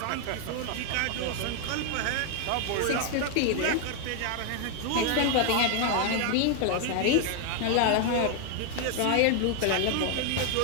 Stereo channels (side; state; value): both; different; correlation 0.00